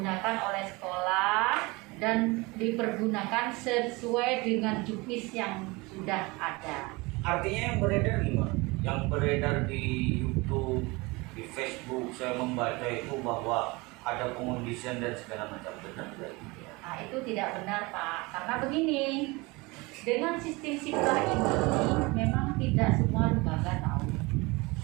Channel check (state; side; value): quieter; left; 24.5 dB